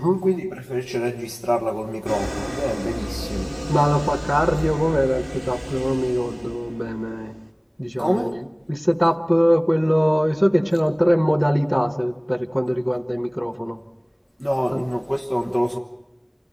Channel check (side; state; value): both; identical; correlation 1.00